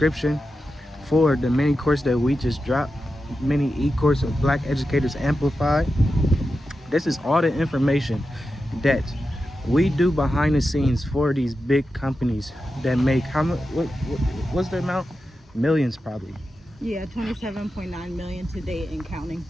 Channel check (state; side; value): normal; both; correlation 0.90